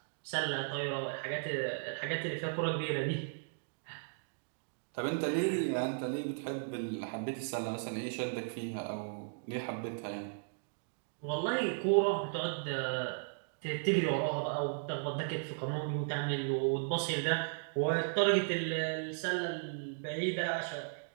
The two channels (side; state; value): left; silent; digital silence